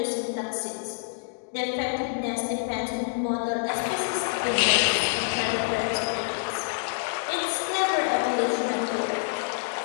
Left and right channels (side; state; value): right; silent; digital silence